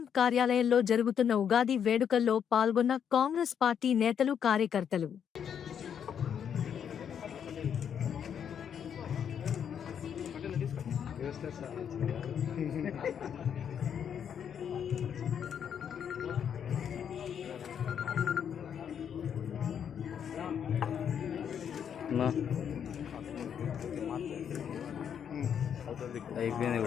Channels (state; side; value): quieter; right; 8.2 dB